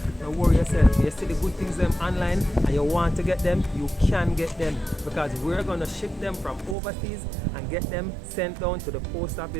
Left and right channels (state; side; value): drops out; left; at 6.8 s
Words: don't worry yourself. You see the good things them online, and you want to get them, you can get them, because we're gonna ship them from overseas and get them sent down to the post